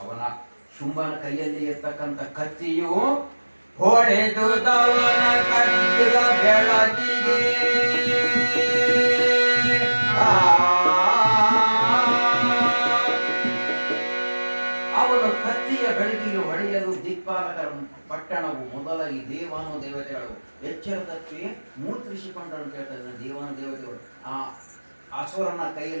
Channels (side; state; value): both; inverted; correlation -1.00